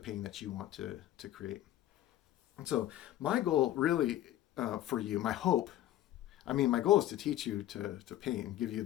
that you want to create. And so my goal really, for you, my hope, I mean, my goal is to teach you to paint and give you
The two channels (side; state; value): right; quieter; 13.4 dB